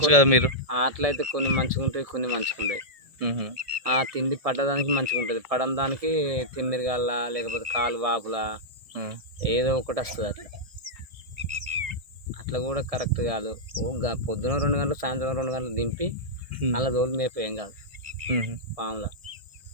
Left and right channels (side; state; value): left; late; 1.7 ms